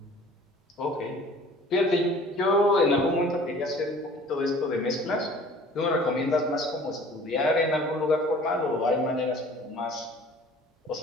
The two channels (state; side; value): normal; both; correlation 0.49